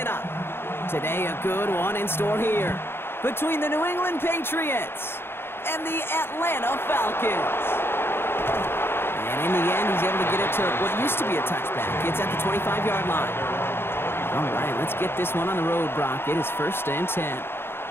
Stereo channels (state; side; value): late; right; 0.11 ms